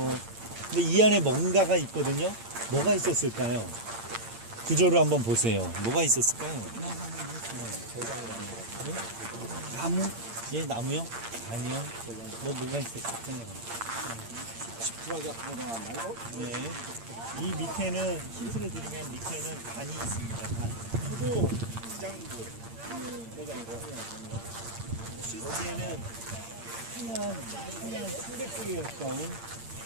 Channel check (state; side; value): late; left; 8.8 ms